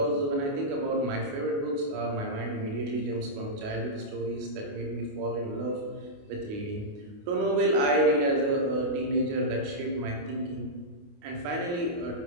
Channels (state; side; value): late; left; 28 ms